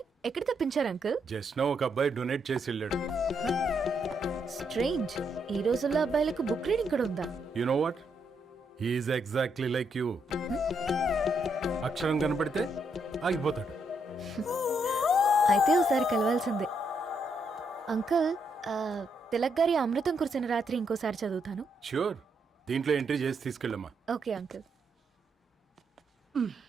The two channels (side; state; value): both; normal; correlation 0.77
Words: ఎక్కడ తెప్పించారు అంకుల్? జస్ట్ నో ఒక అబ్బాయి డొనేట్ చేసి వెళ్ళాడు. స్ట్రేంజ్, ఈ రోజుల్లో అబ్బాయిలకు బుక్ రీడింగ్ కూడా ఉందా? You know what, he is exactly like you. అక్షరం కనపడితే ఆగిపోతాడు. అయితే ఒకసారి కలవాల్సిందే. అంకుల్, తిలక్ గారి అమృతం కురిసిన రాత్రి ఇంకోసారి చదువుతాను. ష్యూర్, దీంట్లో ఎంట్రీ చేసి తీసుకెళ్ళమ్మా. Okay uncle.